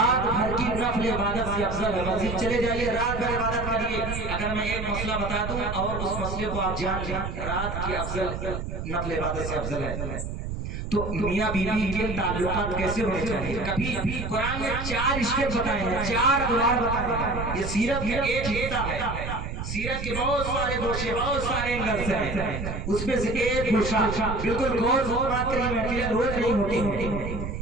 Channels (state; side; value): noise; right; rumble, 5 dB below the sound